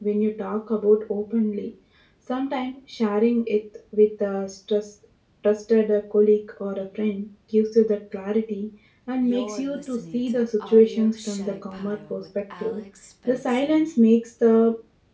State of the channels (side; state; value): both; identical; correlation 1.00